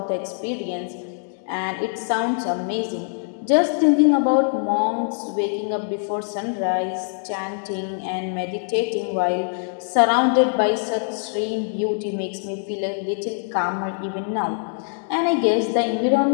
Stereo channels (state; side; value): silent; right; digital silence